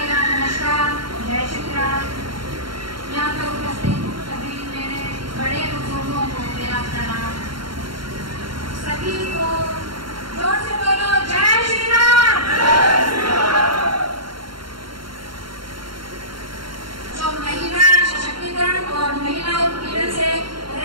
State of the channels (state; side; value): late; left; 0.73 ms